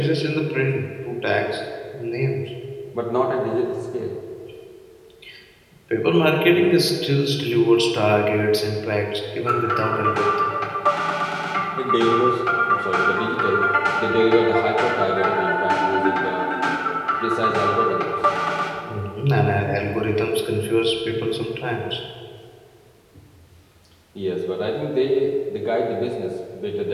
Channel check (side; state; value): both; identical; correlation 1.00